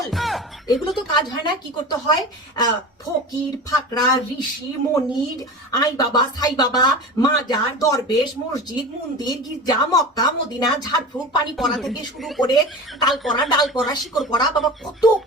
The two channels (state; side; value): normal; both; correlation 0.32